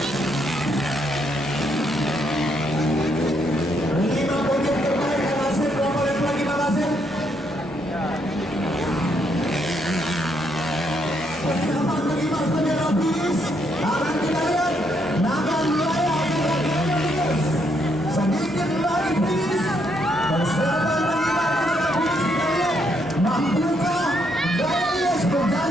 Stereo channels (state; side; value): normal; both; correlation 0.74